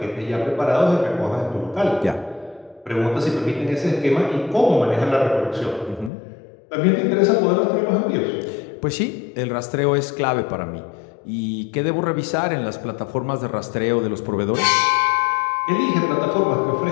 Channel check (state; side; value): drops out; right; at 6.1 s